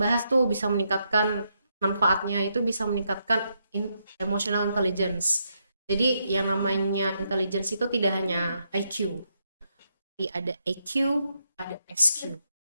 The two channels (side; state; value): both; inverted; correlation -0.80